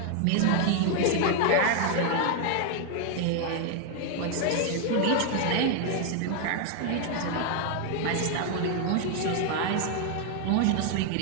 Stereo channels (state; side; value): different; both; correlation 0.00